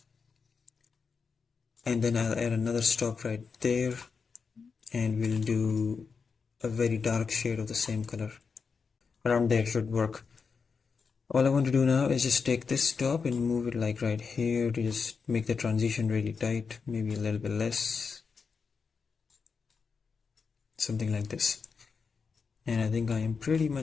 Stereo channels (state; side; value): quieter; right; 5.4 dB